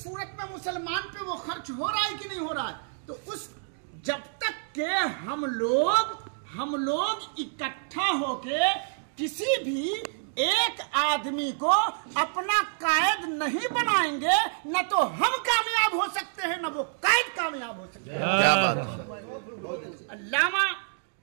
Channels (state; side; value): silent; left; digital silence